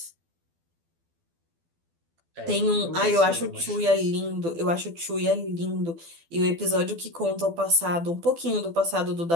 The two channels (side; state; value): left; late; 12 ms